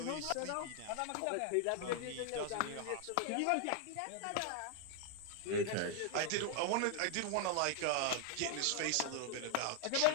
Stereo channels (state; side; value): different; both; correlation 0.00